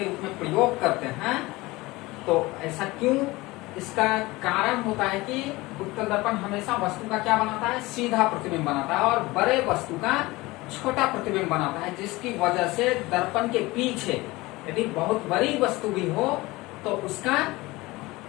रूप में प्रयोग करते हैं तो ऐसा क्यों, इसका कारण होता है कि उत्तल दर्पण हमेशा वस्तु का क्या बनाता है, सीधा प्रतिबिंब बनाता है और बड़े वस्तु का छोटा प्रतिबिंब बनाता है, जिसकी वजह से दर्पण के पीछे यदि बहुत बड़ी वस्तु भी हो तो उसका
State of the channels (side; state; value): right; quieter; 21.0 dB